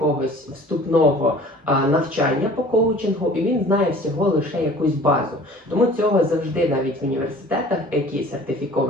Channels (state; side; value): normal; both; correlation 0.47